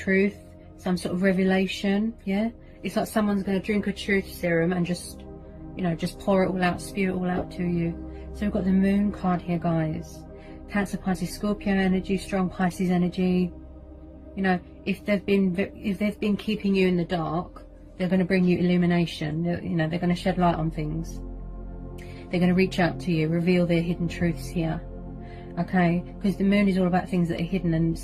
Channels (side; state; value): both; identical; correlation 1.00